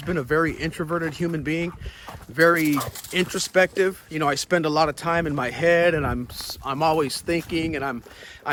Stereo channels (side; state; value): both; identical; correlation 1.00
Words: been a very introverted human being, very introspective. You know, I spend a lot of time in my head, and I'm always thinking, and